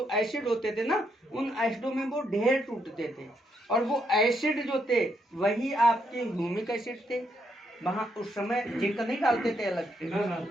एसिड होते थे ना, उन एसिडों में वो ढेर टूटते थे। और वो एसिड जो थे वही आपके ह्यूमिक एसिड थे। वहाँ उस समय जिंक नहीं डालते थे अलग से,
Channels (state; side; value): normal; both; correlation 0.76